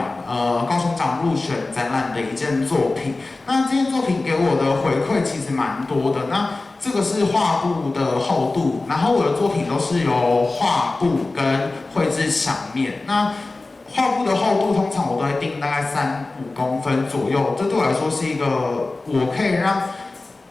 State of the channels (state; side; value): quieter; right; 3.3 dB